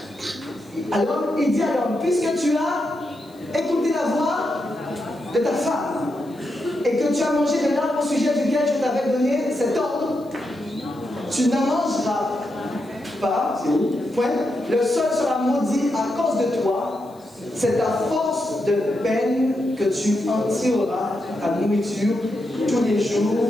Alors, il dit à l'homme, puisque tu as écouté la voix de ta femme et que tu as mangé de l'arbre au sujet duquel je t'avais donné cet ordre, tu n'en mangeras pas, c'est où? Point. Le sol sera maudit à cause de toi. C'est à force de peine que tu en tireras ta nourriture tous les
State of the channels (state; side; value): noise; left; hiss, 30 dB below the sound